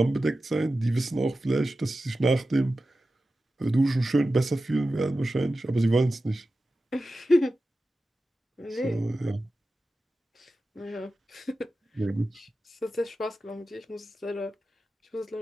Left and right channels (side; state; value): both; normal; correlation 0.93